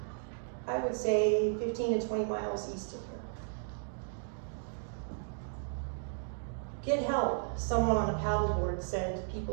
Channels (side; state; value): left; silent; digital silence